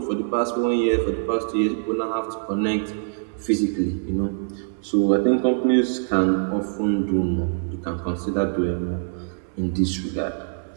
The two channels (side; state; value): left; silent; 61 dB below the other